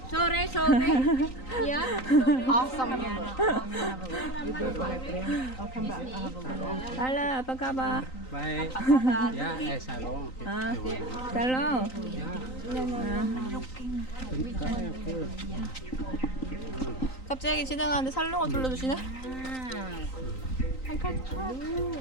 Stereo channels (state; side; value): late; right; 3.9 ms